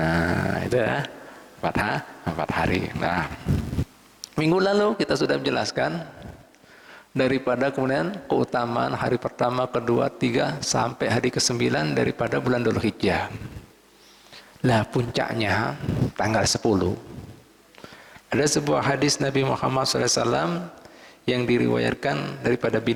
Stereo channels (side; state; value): both; identical; correlation 1.00